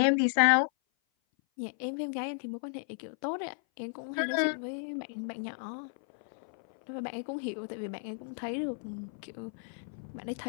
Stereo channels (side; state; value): right; silent; 56 dB below the other